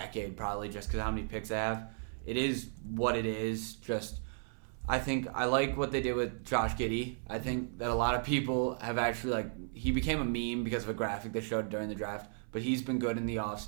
probably, just because how many picks they have. It is what it is. I think I like what they did with Josh Giddey. I think that a lot of people have actually he became a meme because of a graphic they showed during the draft, but he's been good in the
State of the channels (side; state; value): left; silent; 55 dB below the other